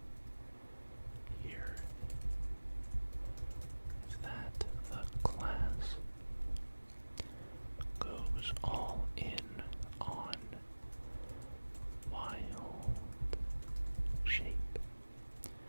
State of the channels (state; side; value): inverted; both; correlation -1.00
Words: here is that the class goes all in on wild shape.